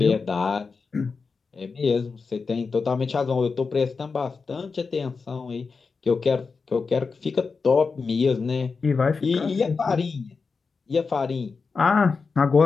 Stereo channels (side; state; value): right; quieter; 4.8 dB